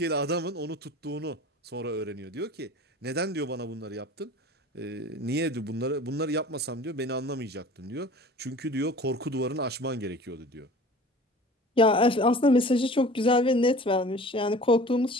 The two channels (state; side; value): normal; both; correlation 0.42